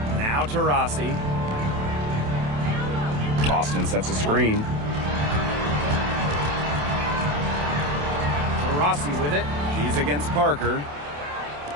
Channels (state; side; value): late; left; 28 ms